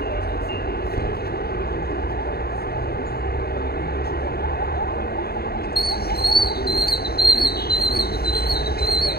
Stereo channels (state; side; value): late; right; 0.45 ms